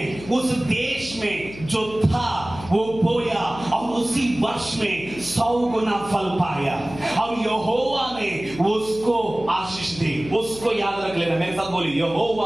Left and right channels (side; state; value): left; noise; hum, 15 dB below the sound